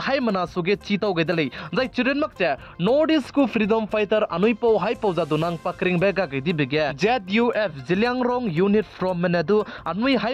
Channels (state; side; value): identical; both; correlation 1.00